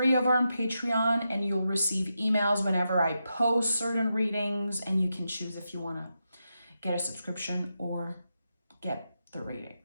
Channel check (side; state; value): both; inverted; correlation -0.87